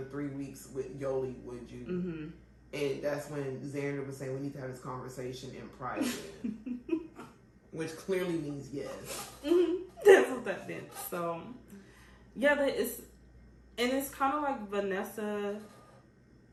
3 weeks with Yoli, would you? And that's when Xander was saying we need to have this conversation in private. Which clearly means yes. That's what that meant. So, yeah, it's kind of like Vanessa.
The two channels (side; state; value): both; identical; correlation 1.00